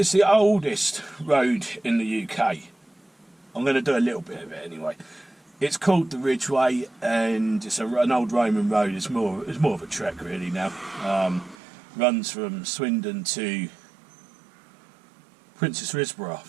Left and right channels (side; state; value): left; drops out; at 11.6 s